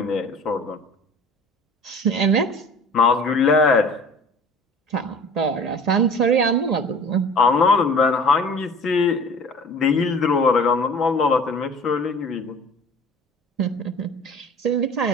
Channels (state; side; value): normal; both; correlation 0.44